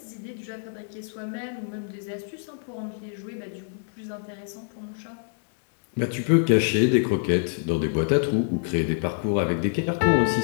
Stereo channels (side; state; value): right; silent; digital silence